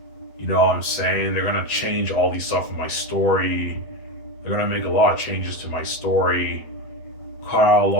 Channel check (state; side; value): late; right; 8.1 ms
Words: You know what I'm saying? They're going to change all these stuff in my story. They're going to make a lot of changes to my story. Cut out a